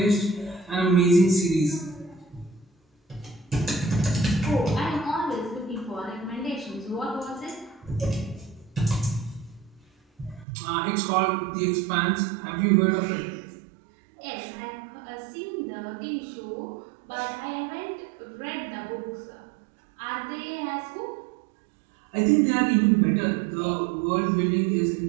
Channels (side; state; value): left; drops out; at 10.5 s